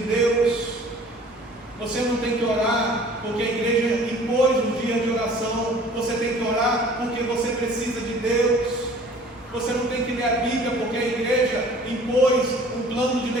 Deus. Você não tem que orar porque a igreja impôs um dia de oração. Você tem que orar porque você precisa de Deus. Você não tem que ler a Bíblia porque a igreja impôs um plano de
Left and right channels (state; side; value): normal; both; correlation 0.49